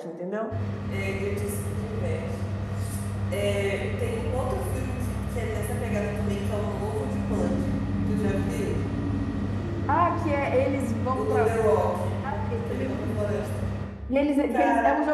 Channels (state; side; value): identical; both; correlation 1.00